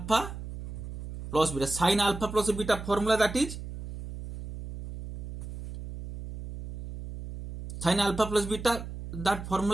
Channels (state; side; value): noise; right; hum, 9 dB below the sound